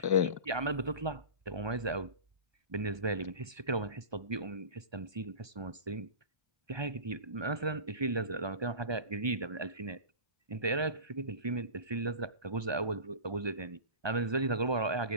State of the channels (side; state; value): left; late; 1.2 ms